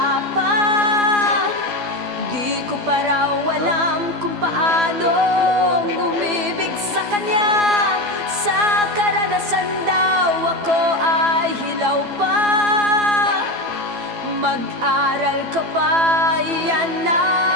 pa, di ko pa raw alam kung paano umibig sa kanya. Sa karanasan daw ako ay hilaw pa. Mag-aral ka pa, yan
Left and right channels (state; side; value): late; left; 12 ms